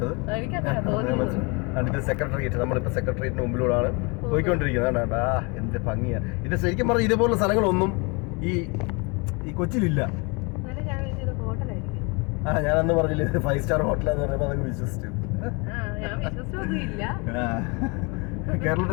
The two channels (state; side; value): quieter; right; 30.1 dB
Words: ഇത് സെക്രട്ടേറിയറ്റ്, നമ്മളിപ്പോൾ സെക്രട്ടേറിയറ്റിന് മുമ്പിലൂടെയാണ് പോയിക്കൊണ്ടിരിക്കുന്നത്. എന്ത് ഭംഗിയാ ഇത്. ശരിക്കും പറഞ്ഞാൽ ഇതേപോലുള്ള സ്ഥലങ്ങളൊന്നും ഈ കൊച്ചിയിലില്ല. ഞാൻ അന്ന് പറഞ്ഞില്ലേ 5-സ്റ്റാർ ഹോട്ടലാന്ന് പറഞ്ഞപ്പോൾ അതങ്ങ് വിശ്വസിച്ചു.